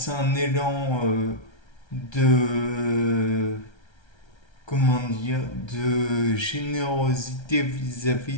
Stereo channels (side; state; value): right; late; 1.3 ms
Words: un élan de comment dire, de générosité